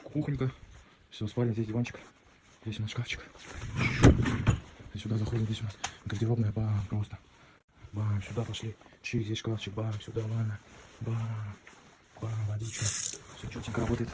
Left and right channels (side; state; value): both; identical; correlation 1.00